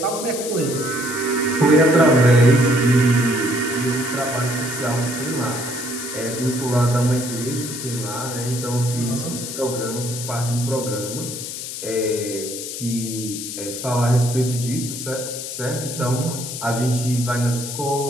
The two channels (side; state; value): left; noise; hiss, 7 dB below the sound